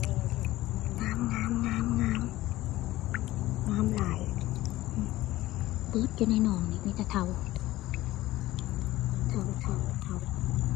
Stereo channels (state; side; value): quieter; right; 16.4 dB